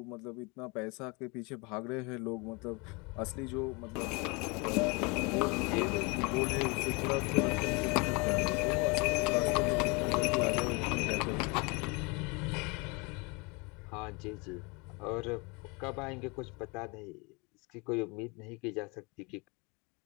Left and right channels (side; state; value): right; quieter; 29.0 dB